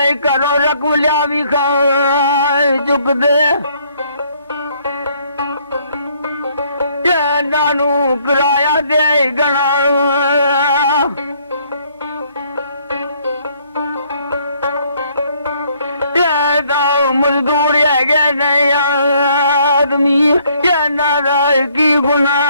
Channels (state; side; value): inverted; both; correlation -0.65